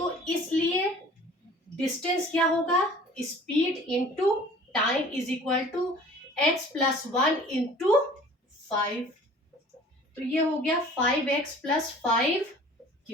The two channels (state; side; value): normal; both; correlation 0.48